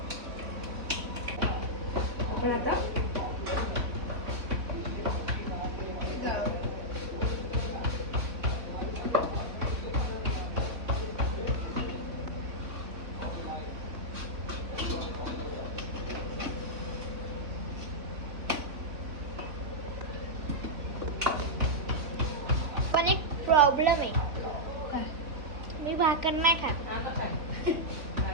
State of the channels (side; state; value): left; late; 3.7 ms